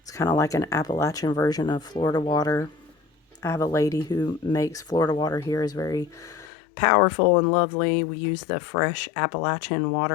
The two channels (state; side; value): drops out; right; at 6.5 s